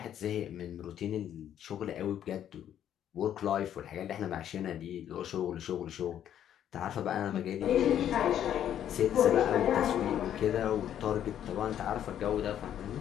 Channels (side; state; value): right; quieter; 10.4 dB